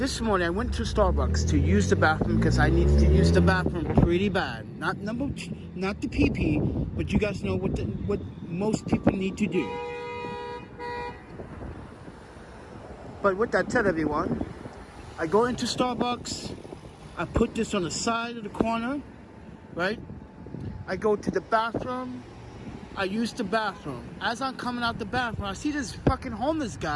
morning I went to Starbucks to use the bathroom because I needed to use the bathroom pretty bad. Not the PP, but you guys know what most people need to do. But with that said, everyone, I go into Starbucks. I put this on the side of the corner, right? I go to the bathroom. I use the bathroom. As I'm coming out the bathroom, I see this fucking homeless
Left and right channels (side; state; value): both; identical; correlation 1.00